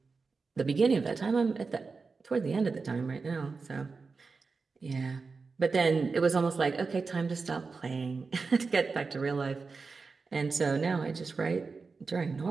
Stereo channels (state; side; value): quieter; left; 4.5 dB